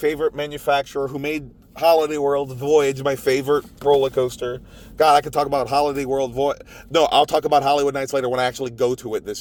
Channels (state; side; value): identical; both; correlation 1.00